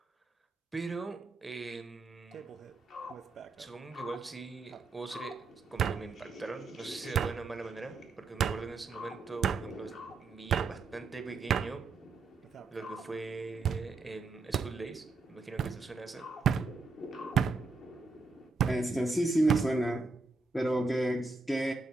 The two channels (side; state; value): left; quieter; 4.0 dB